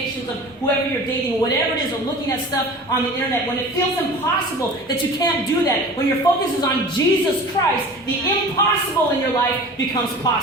of whoever you're dating, whatever it is, or looking at stuff on the internet, when it feels impossible that you can't do that, when your focus is on Jesus Christ, the impossible in your life becomes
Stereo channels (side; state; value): both; normal; correlation 0.39